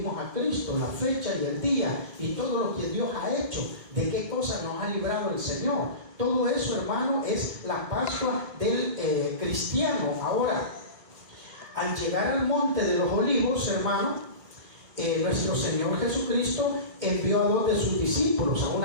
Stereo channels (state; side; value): late; left; 1.1 ms